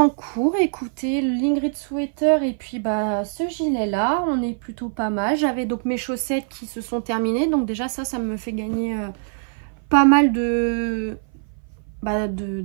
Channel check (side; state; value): left; silent; 58 dB below the other